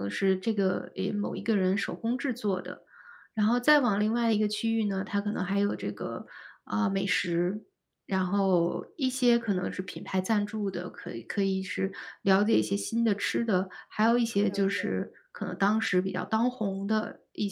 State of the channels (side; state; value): both; identical; correlation 1.00